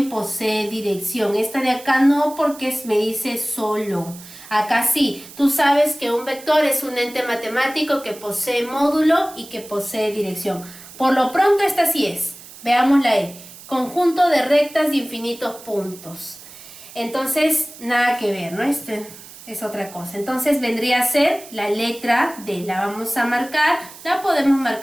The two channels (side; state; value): right; noise; hiss, 18 dB below the sound